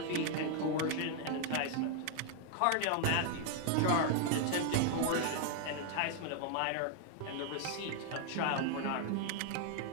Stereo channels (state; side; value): different; both; correlation 0.00